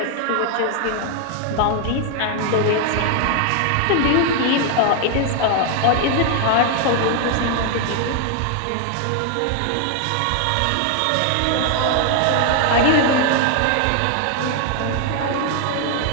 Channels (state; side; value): different; both; correlation 0.00